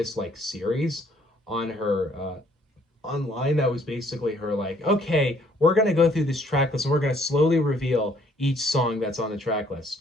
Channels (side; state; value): both; normal; correlation 0.63